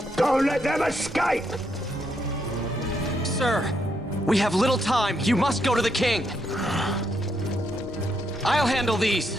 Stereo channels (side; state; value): both; normal; correlation 0.78